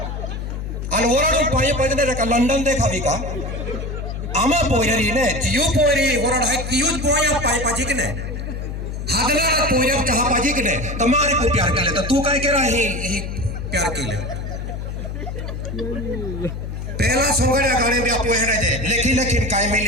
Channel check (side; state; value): left; noise; hum, 6 dB below the sound